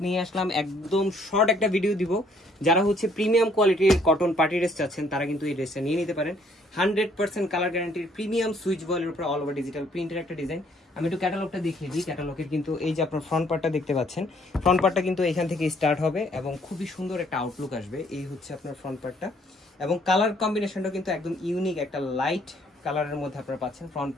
নিয়ে আসলাম। একদম শর্ট একটা ভিডিও দিব। যারা হচ্ছে প্রিমিয়াম কোয়ালিটির কটন পার্টি ড্রেস চাচ্ছেন তারা কিন্তু এই ড্রেসটা নিয়ে নিতে পারেন। 100% কালার গ্যারান্টির প্রিমিয়াম সুইচ বয়েলের উপর অল ওভার ডিজিটাল প্রিন্টের একটা ডিজাইন। আমি একটু ক্যাটালগটা দেখিয়ে দিই। ক্যাটালগের কিন্তু এই যে আপনার ফ্রন্ট পার্টটা দেখতে পাচ্ছেন, ফ্রন্ট পার্টটা কিন্তু এখান থেকে স্টার্ট হবে এবং খুবই সুন্দর একটা আউটলুক আসবে। এই হচ্ছে আপনার ফ্রন্ট পার্টটা এবং কালার কম্বিনেশনটা কিন্তু একদম ইউনিক একটা লাইট কালারের মধ্যে আপনারা পাচ্ছেন। ফ্রন্ট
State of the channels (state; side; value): normal; both; correlation 0.64